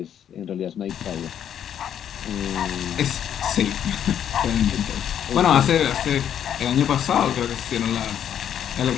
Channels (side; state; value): right; quieter; 9.5 dB